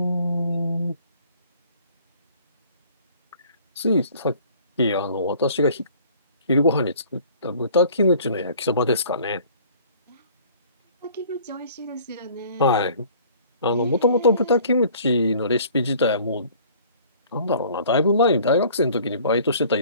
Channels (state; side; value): inverted; both; correlation -0.52